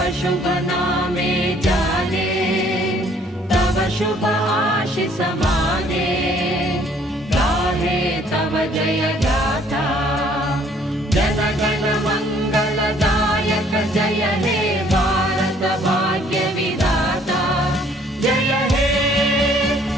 शुभ नामे जाने तव शुभ आशीष माने गाहे तव जय गाथा जन गण मंगलदायक जय हे भारत भाग्य विधाता जय हे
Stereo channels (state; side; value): normal; both; correlation 0.61